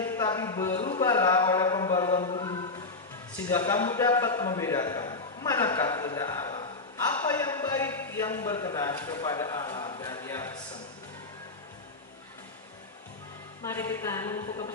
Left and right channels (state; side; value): quieter; right; 3.6 dB